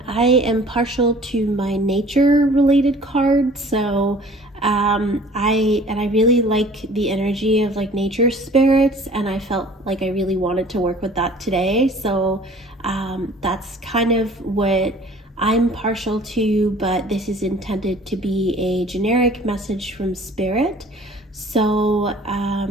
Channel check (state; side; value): normal; both; correlation 0.50